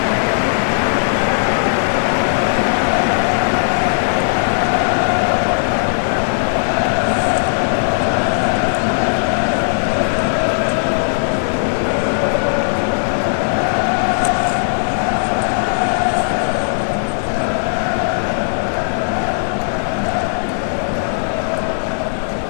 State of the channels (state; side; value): silent; right; digital silence